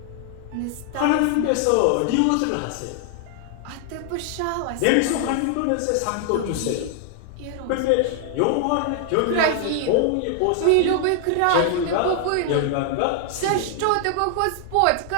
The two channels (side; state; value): both; different; correlation 0.00